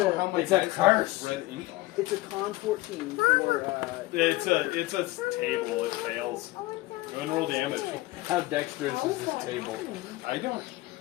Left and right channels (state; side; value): quieter; right; 19.4 dB